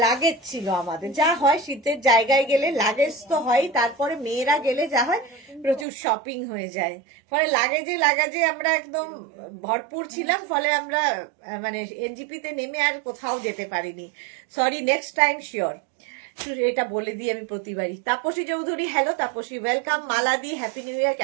লাগেজ ছিল আমাদের। যা হয় শীতের জায়গায় গেলে লাগেজ তো হয়, তারপরে মেয়েরা গেলে যা হয় প্রচুর শপিং হয়ে যায়, ফলে লাগেজে আমরা একদম ভরপুর ছিলাম, ফলে আমরা মানে এনজিপিতে নেমে আর কোথাও যেতে পারিনি। Sorry, next time sure. এটা বলে দিই আমি প্রতিবারই। Tapasi Chowdhury, hello Tapasi, welcome. মালাদি, হ্যাপি নিউ ইয়ার,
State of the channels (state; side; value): drops out; left; at 5.9 s